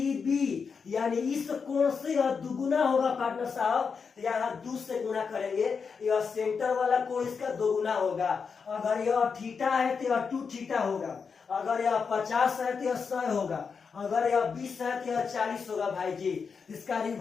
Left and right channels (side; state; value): right; quieter; 5.6 dB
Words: बी, यानी इस कोण से यह दुगुना होगा पार्टनर साहब। यहाँ 2 से गुना करेंगे, यह सेंटर वाला कोण इसका दोगुना होगा। अगर यह थीटा है तो यह 2 थीटा होगा, अगर यह 50 है तो यह 100 होगा, अगर यह 20 है तो यह 40 होगा भाई जी। इसका